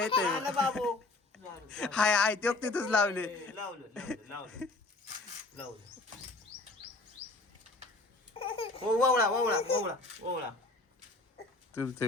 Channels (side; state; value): right; quieter; 3.1 dB